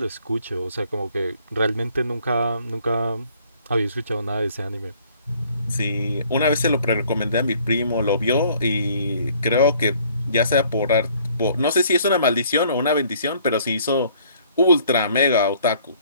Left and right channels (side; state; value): both; inverted; correlation -0.59